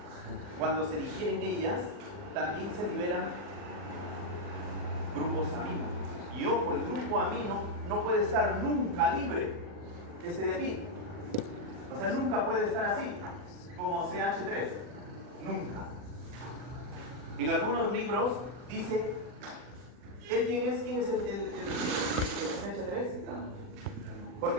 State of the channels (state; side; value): late; left; 40 ms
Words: Cuando se digieren ellas, también se liberan grupos amino. Y ojo, el grupo amino no puede estar nunca libre. Este de aquí. O sea, nunca puede estar así, como CH3. Nunca. En algunos libros dice, ¿él quién es? ¿Quién es el CH3?